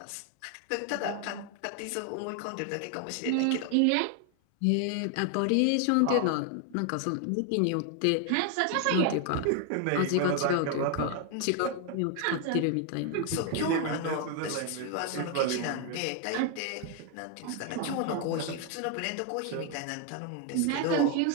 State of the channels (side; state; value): both; different; correlation 0.01